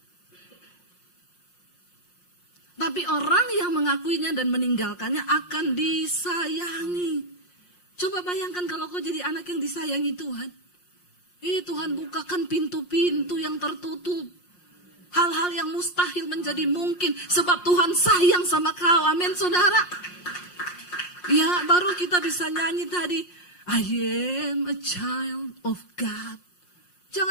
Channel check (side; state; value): right; late; 5.6 ms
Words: Tapi orang yang mengakuinya dan meninggalkannya akan disayangi. Coba bayangkan kalau kau jadi anak yang disayangi Tuhan. Tuhan bukakan pintu-pintu yang tertutup. Hal-hal yang mustahil menjadi mungkin. Sebab Tuhan sayang sama kau. Amin, saudara. Ya, baru kita bisa nyanyi tadi. I am a child of God.